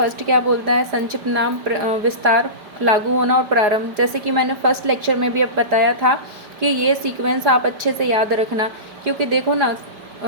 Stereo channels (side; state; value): left; late; 5.1 ms